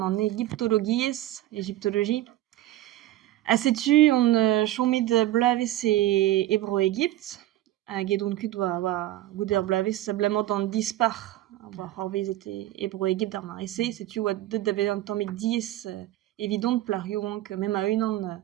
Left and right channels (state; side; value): quieter; left; 14.8 dB